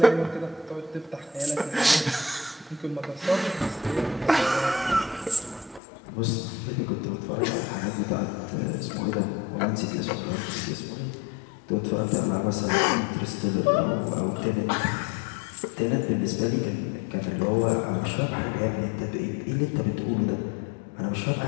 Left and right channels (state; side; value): drops out; right; at 5.8 s